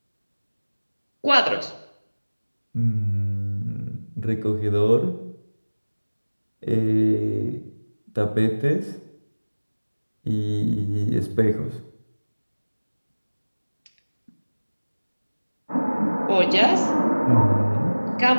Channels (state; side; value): inverted; both; correlation -1.00